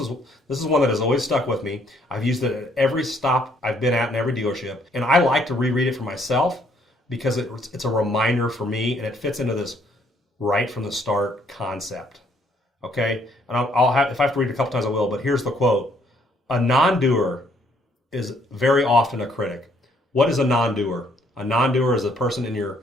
one that has always stuck with me. I've used it at every stop I've been at in every dealership, and I like to reread it for myself because it's a reminder for me, and it fits into this right from the start concept. Okay, and I'll have, if I have to read it a couple times, I will. But here's the quote: "A non-doer is very often a critic." What is a non-doer? A non-doer is a person in your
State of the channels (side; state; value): both; normal; correlation 0.67